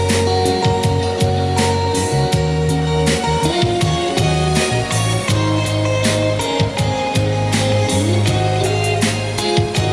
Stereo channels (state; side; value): identical; both; correlation 1.00